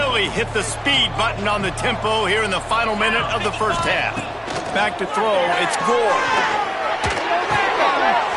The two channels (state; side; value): identical; both; correlation 1.00